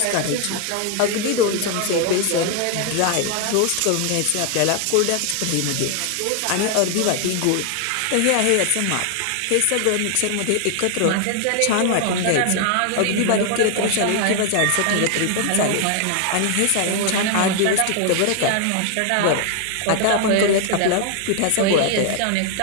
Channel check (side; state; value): both; different; correlation 0.00